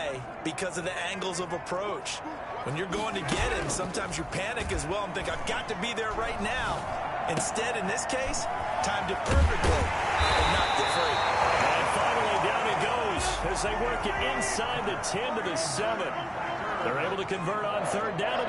because of the angles of approach. When you're going to get him, sometimes you panic as well and think, I've got to be there right now. Instead, in this case, timed it perfectly and knocked it free. And finally, down it goes as they work it inside the 10 to the 7. They're able to convert on 3rd down, and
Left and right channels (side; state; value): both; identical; correlation 1.00